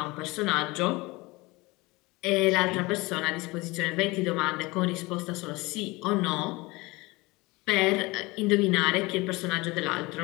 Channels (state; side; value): quieter; right; 23.0 dB